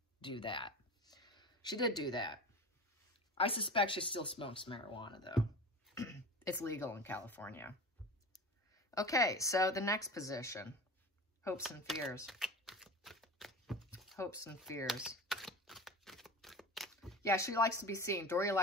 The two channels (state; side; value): normal; both; correlation 0.32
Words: do that. She did do that. I suspect she still smokes marijuana, though. It's legal in California. Okay, so the next position, hopes and fears. Hopes and fears. Yeah, she likes to be seen. Doria